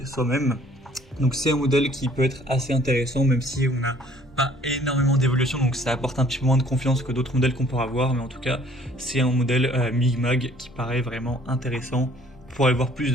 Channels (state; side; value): normal; both; correlation 0.57